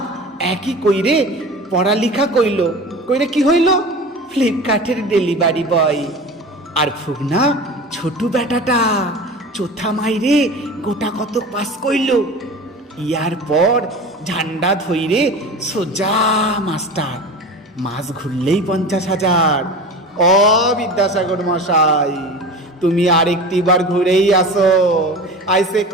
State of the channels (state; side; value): normal; both; correlation 0.34